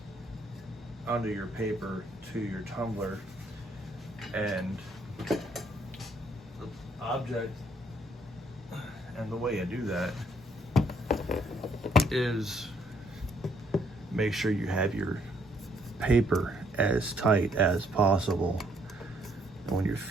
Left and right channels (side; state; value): both; normal; correlation 0.68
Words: under your paper to your tumbler. And the object and the way I do that is make sure you have your paper as tight as possible. And when you